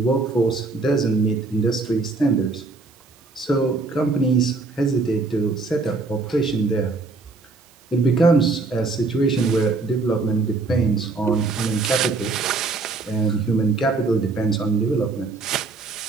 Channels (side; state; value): left; quieter; 3.8 dB